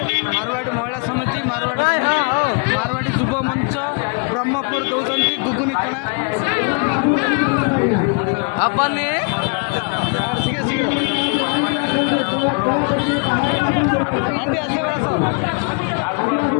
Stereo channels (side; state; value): right; quieter; 36.6 dB